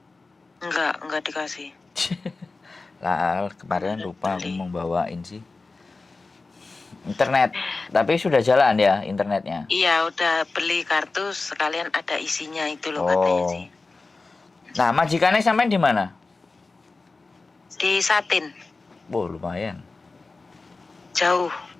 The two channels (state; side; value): quieter; right; 3.7 dB